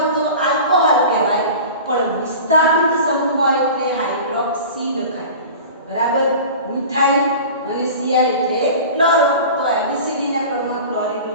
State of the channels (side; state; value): both; inverted; correlation -0.37